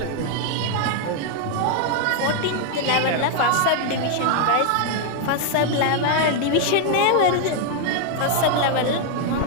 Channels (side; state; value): both; different; correlation 0.00